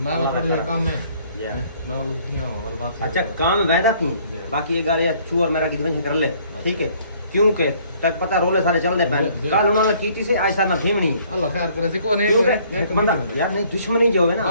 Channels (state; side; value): inverted; both; correlation -0.60